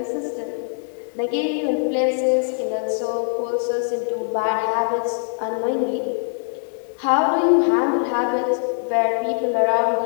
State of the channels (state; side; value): silent; right; 64 dB below the other